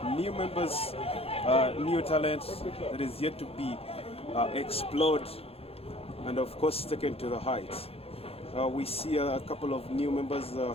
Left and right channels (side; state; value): right; late; 0.28 ms